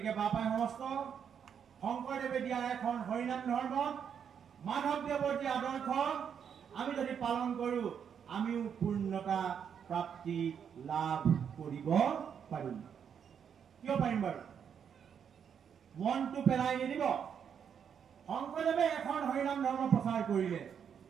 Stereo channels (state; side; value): quieter; left; 7.7 dB